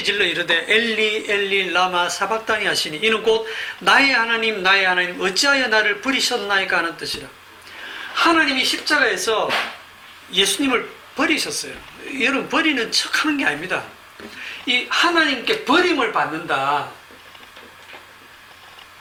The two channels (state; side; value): identical; both; correlation 1.00